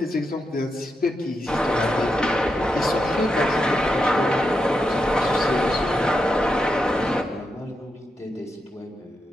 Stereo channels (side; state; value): both; normal; correlation 0.85